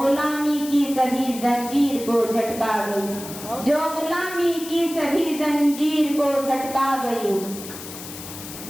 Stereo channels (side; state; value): left; noise; hiss, 12 dB below the sound